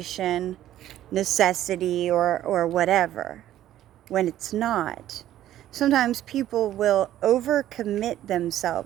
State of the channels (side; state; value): left; quieter; 12.7 dB